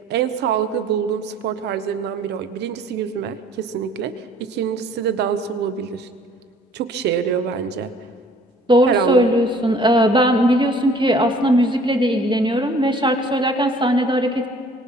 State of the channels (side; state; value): both; normal; correlation 0.54